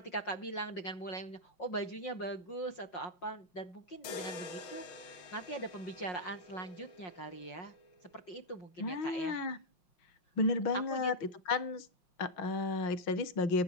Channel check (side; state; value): right; late; 5.6 ms